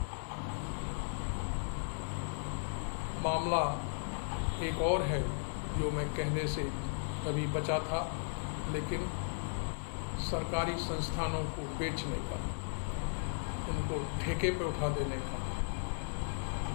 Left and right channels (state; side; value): silent; right; digital silence